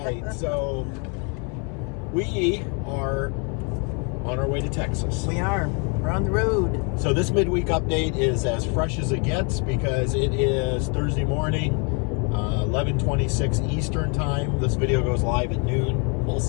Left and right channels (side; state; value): right; quieter; 35.1 dB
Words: So, we are on our way to Texas. We are. We're on the road. So this Midweek Update is as fresh as it gets because it is Thursday morning, 11:26 Eastern Time. This video goes live at noon. We'll